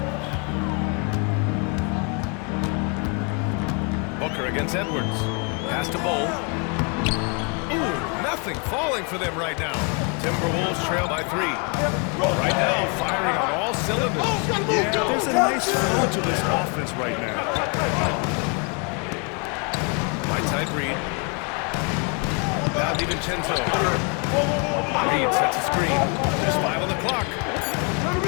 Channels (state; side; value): quieter; right; 35.3 dB